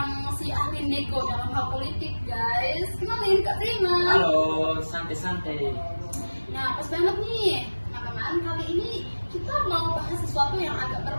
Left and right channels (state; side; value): inverted; both; correlation -1.00